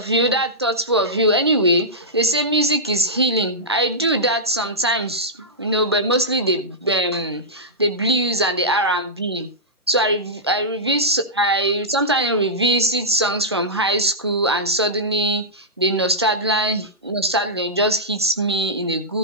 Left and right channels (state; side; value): normal; both; correlation -0.12